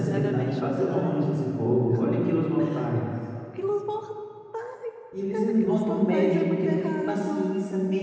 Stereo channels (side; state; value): both; identical; correlation 1.00